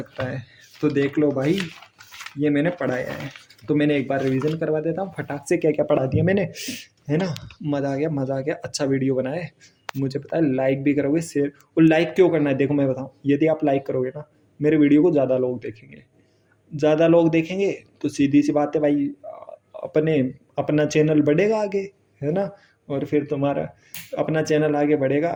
है। तो देख लो भाई, ये मैंने पढ़ाया है, तो मैंने एक बार रिवीजन करवा देता हूँ फटाक से, क्या क्या पढ़ा दिया मैंने, है ना। मज़ा आ गया, मज़ा आ गया, अच्छा वीडियो बनाया है, मुझे पता है लाइक भी करोगे, शेयर। और लाइक क्यों करना है, देखो मैं बताऊँ, यदि आप लाइक करोगे ना, मेरे वीडियो को ज़्यादा लोग देखेंगे, ज़्यादा लोग देखेंगे तो सीधी सी बात है भाई, अपने अपना चैनल बढ़ेगा आगे, है ना। और फिर तुम्हारा अपना चैनल आगे बढ़ेगा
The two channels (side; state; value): both; identical; correlation 1.00